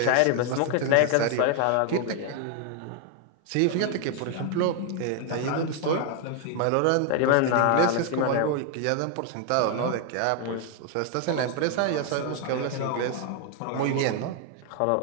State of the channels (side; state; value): both; different; correlation 0.00